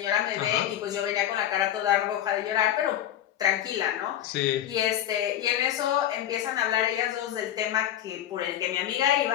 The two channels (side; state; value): right; quieter; 11.5 dB